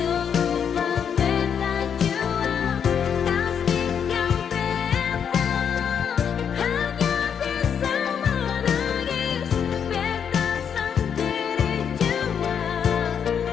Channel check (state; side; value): quieter; right; 7.7 dB